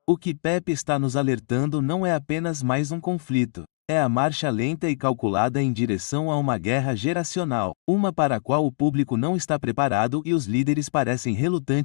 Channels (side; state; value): right; silent; digital silence